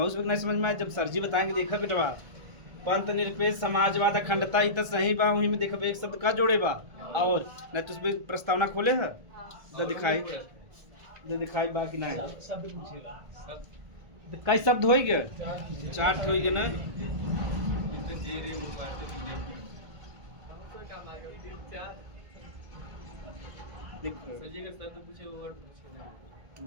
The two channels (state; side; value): late; left; 1.7 ms